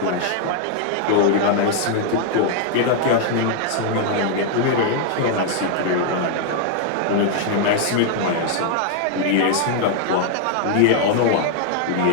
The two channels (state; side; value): different; both; correlation 0.00